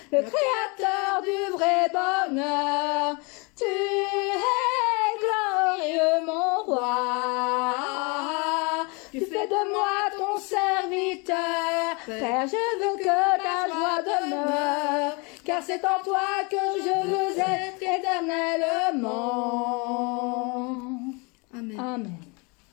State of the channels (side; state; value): right; quieter; 29.5 dB